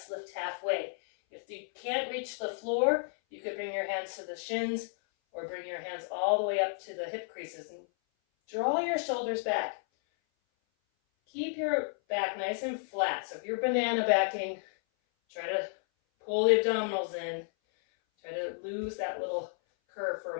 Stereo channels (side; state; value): right; silent; 56 dB below the other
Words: lift halfway. If you can't reach the floor, you could bring your hands to the shins or bring your hands all the way up to the hip creases and draw your shoulders back. Keep your back nice and flat. So if you're banana backing, try to pull the abdominals in. Try to lose that little curve for